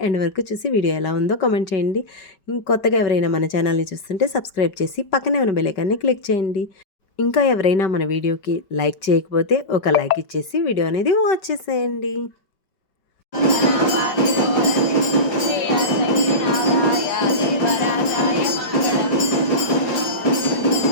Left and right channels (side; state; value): right; late; 5.2 ms